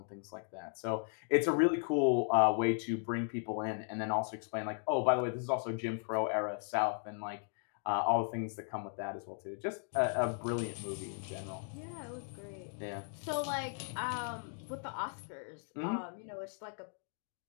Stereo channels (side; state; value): right; silent; 53 dB below the other